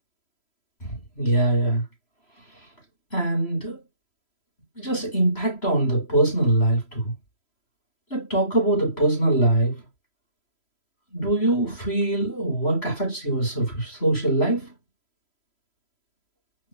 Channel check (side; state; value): right; late; 3.0 ms